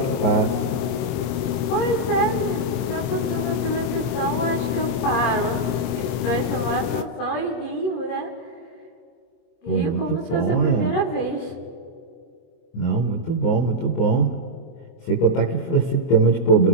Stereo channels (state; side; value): late; right; 24 ms